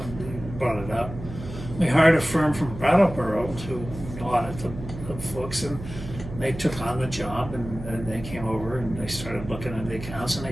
brought it up. We hired a firm from Brattleboro to audit the books, and they took on the job, and they came over and they started looking at the accounts, and they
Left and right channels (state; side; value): noise; right; hum, 11 dB below the sound